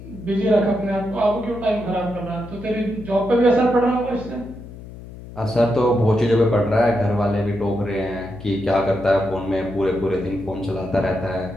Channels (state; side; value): noise; left; hum, 15 dB below the sound